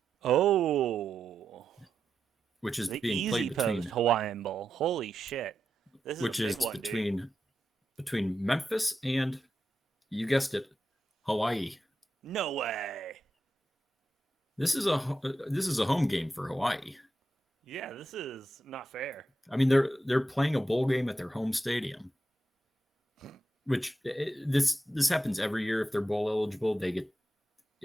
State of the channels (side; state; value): both; normal; correlation 0.87